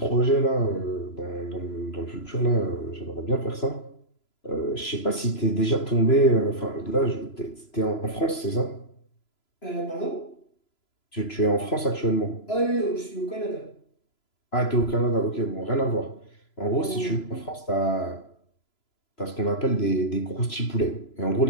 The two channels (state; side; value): late; right; 3.0 ms